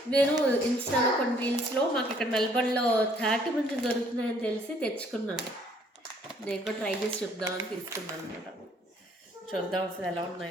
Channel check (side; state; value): both; normal; correlation 0.62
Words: నేను ఇన్స్టాలో కొన్ని రీల్స్లో మాకు ఇక్కడ మెల్బర్న్లో 30 మంది దొరుకుతున్నాయని తెలిసి తెచ్చుకున్నాను. నేను కూడా ట్రై చేసి చూద్దామని తీసుకున్నాను అనమాట. చూద్దాం అసలు ఎలా